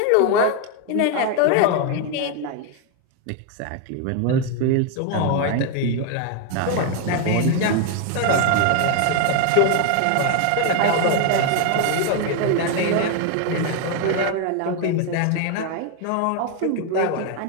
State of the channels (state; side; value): different; both; correlation 0.01